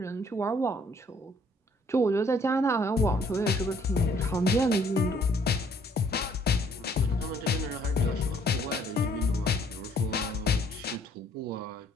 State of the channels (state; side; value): normal; both; correlation 0.62